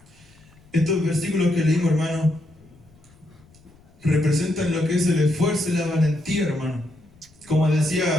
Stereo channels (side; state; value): left; noise; rumble, 28 dB below the sound